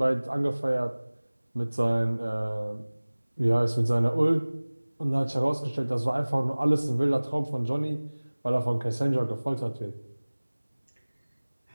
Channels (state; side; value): inverted; both; correlation -1.00